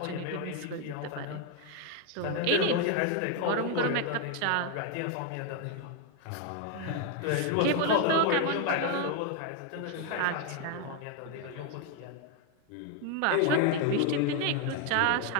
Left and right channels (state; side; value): different; both; correlation 0.01